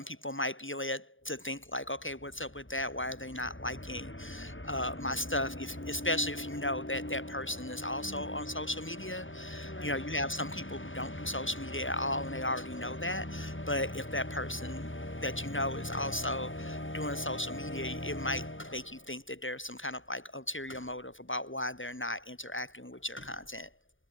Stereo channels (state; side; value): late; right; 0.57 ms